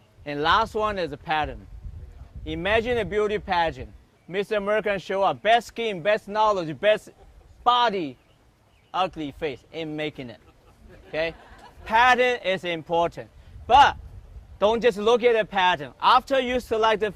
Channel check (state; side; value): identical; both; correlation 1.00